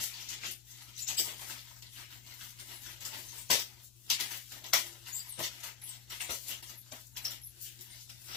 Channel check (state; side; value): quieter; right; 6.8 dB